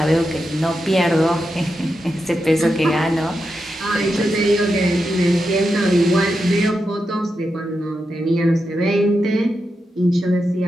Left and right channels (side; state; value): both; normal; correlation 0.87